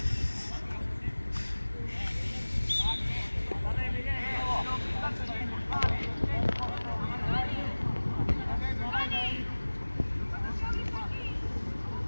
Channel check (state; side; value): inverted; both; correlation -1.00